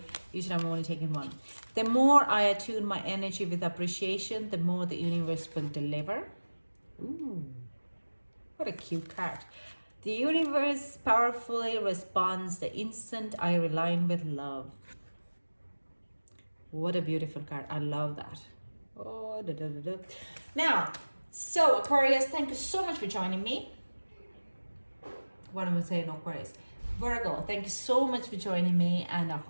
Usually I'm only taking one. The more I attune my energy with appreciation, the more the universe will deliver. Ooh, what a cute card. The universe powerfully responds the instant I align with love. What a beautiful card. I love that. Oh, da, da, da, da. Now, so Aquarius, thank you so much for joining me. What am I saying, Aquarius? Virgo, thank you so much for joining me, and I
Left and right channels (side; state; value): both; inverted; correlation -1.00